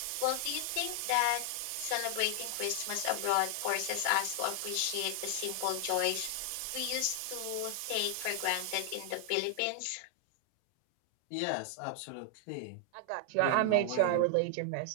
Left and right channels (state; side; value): different; both; correlation 0.00